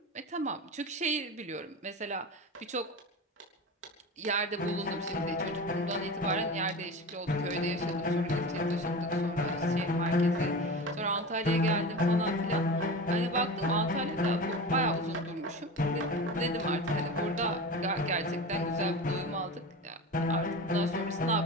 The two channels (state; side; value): normal; both; correlation 0.29